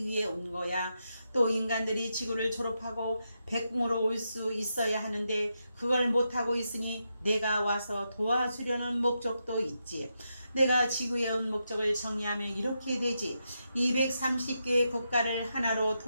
위해 온 거야. 또 인간들이 지구를 졸업하고 백궁으로 올 수 있어야 하는데 그걸 못하고 있으니 내가 와서 도와주려는 목적도 있지. 내가 지구에 온 목적을 정리하면 이렇게 되지. 230개의 국가를 하나로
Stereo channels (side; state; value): both; inverted; correlation -0.85